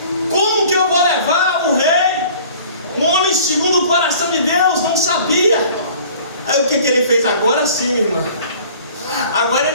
Como que eu vou levar o rei? Um homem segundo o coração de Deus, não sabia. Aí o que ele fez? Agora sim, minha irmã. Agora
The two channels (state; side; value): inverted; both; correlation -0.49